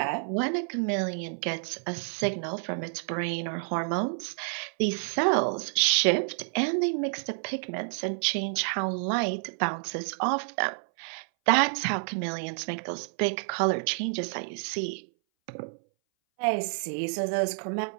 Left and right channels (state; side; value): silent; left; 59 dB below the other